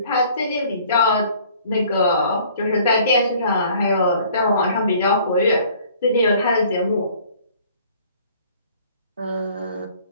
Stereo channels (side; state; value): both; inverted; correlation -0.55